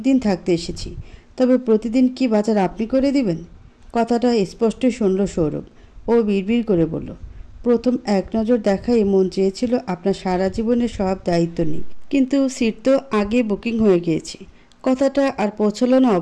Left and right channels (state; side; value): identical; both; correlation 1.00